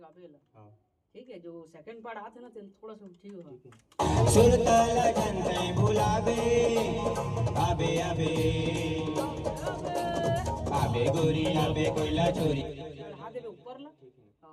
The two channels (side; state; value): both; identical; correlation 1.00